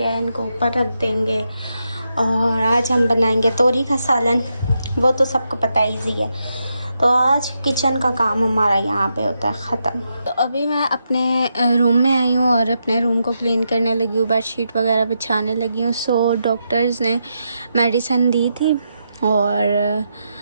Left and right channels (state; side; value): inverted; both; correlation -0.84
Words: है। इनको ऊपर रख देंगे और आज हम बनाएंगे तोरी का सालन। वो तो सबको पता ईजी है। तो आज किचन का काम हमारा यहाँ पे होता है ख़त्म। तो अभी मैं अपने रूम में आई हूँ और अपने रूम को क्लीन करने लगी हूँ, बेडशीट वगैरह बिछाने लगी हूँ। सो डॉक्टर्स ने मेडिसिन दी थी और